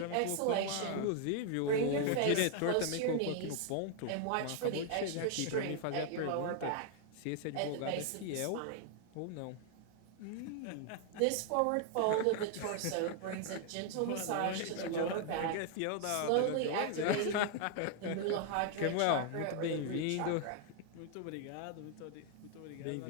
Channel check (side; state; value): both; different; correlation 0.00